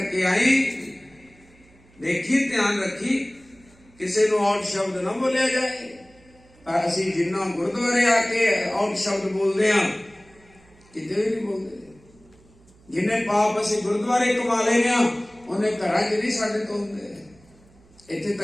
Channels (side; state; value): right; noise; hum, 28 dB below the sound